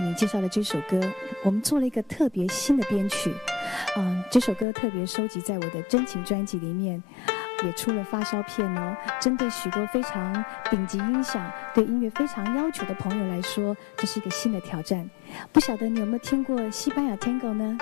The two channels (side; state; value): right; drops out; at 4.7 s